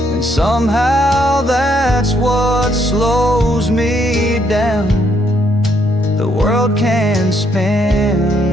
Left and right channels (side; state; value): both; normal; correlation 0.72